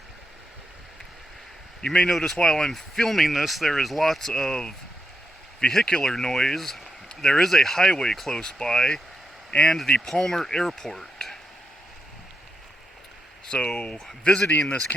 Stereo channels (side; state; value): both; normal; correlation 0.84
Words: You may notice while I'm filming this, there is lots of vehicular noise. There is a highway close by, and the Palmer Airport. So, visiting this